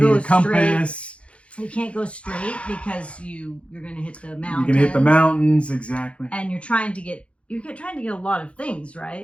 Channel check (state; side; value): late; right; 0.061 ms